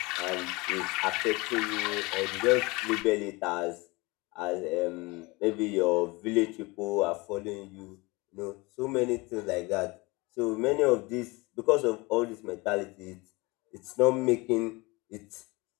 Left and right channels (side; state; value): right; quieter; 24.6 dB